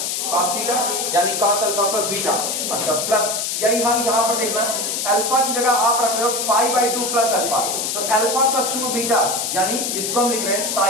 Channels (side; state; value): left; noise; hiss, 1 dB below the sound